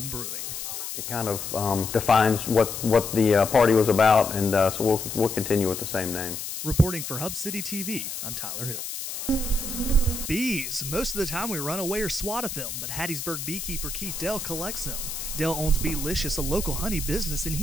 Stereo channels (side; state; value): left; noise; hiss, 6 dB below the sound